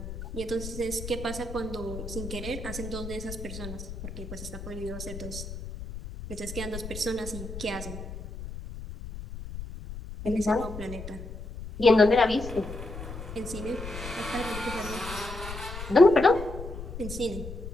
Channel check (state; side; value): noise; left; rumble, 9 dB below the sound